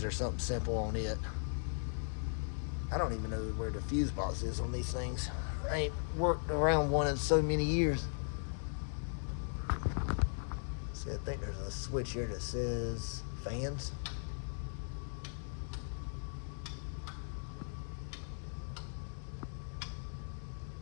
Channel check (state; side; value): silent; right; digital silence